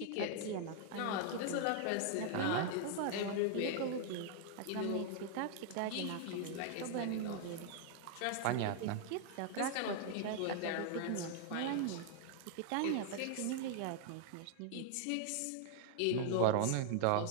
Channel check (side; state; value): both; different; correlation 0.00